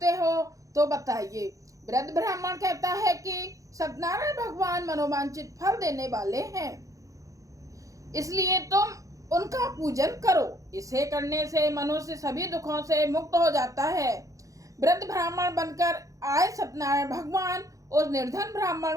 हो तो बताइए। वृद्ध ब्राह्मण कहता है कि सत्यनारायण भगवान मनोवांछित फल देने वाले हैं, इसलिए तुम उनका पूजन करो। इसे करने से मनुष्य सभी दुखों से मुक्त हो जाता है। वृद्ध ब्राह्मण बनकर आए सत्यनारायण भगवान उस निर्धन ब्राह्मण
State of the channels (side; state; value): left; late; 0.16 ms